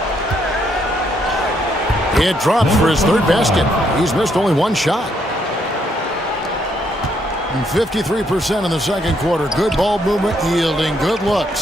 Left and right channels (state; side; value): normal; both; correlation 0.73